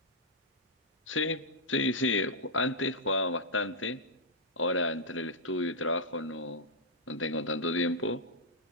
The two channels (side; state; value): both; normal; correlation -0.09